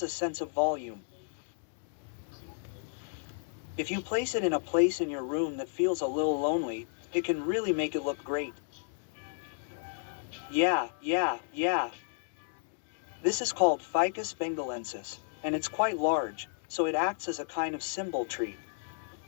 a sense of volume. If you place it in a place in your room that feels a little lonely, it can really make it look great. Yeah. This is called Ficus bengalensis, and it's quite large, so it acts as a kind of symbol tree.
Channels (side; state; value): right; silent; digital silence